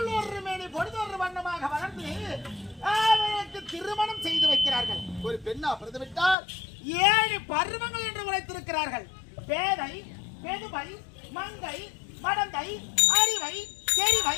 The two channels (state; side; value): drops out; right; at 6.4 s